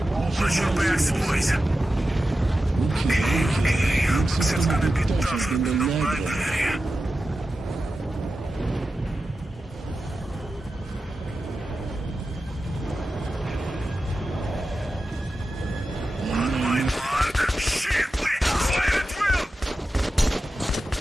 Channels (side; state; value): both; normal; correlation 0.92